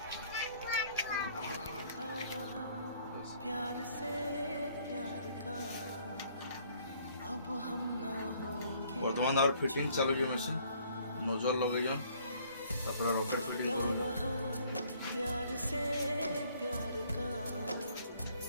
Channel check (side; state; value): both; inverted; correlation -0.62